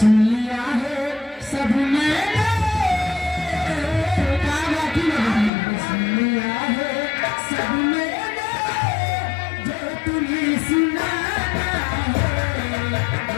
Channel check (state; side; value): drops out; right; at 5.5 s